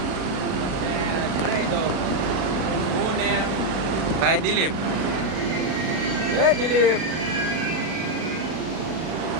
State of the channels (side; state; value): left; late; 37 ms